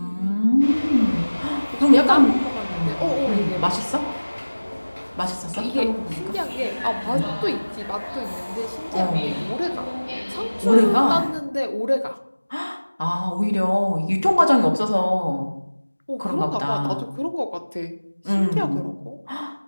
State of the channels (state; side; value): inverted; both; correlation -1.00